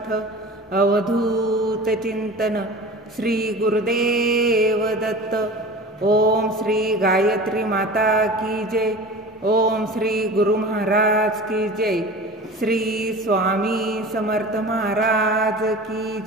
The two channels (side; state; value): both; normal; correlation 0.37